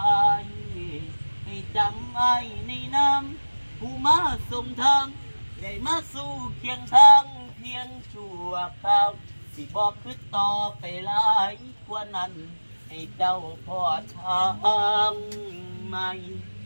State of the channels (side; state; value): both; inverted; correlation -1.00